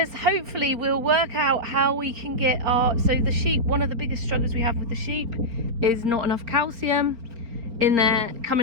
hopefully we'll work out how we can get the sheep. One of the biggest struggles we have with the sheep is not enough calcium in there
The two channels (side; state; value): left; late; 4.3 ms